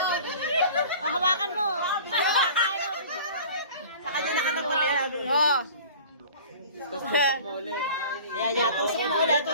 Hawakan mo. Sa kanya nakatapal yan. Oo. Tusok mo ulit. Yan, tusok mo ulit.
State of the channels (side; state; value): both; inverted; correlation -0.42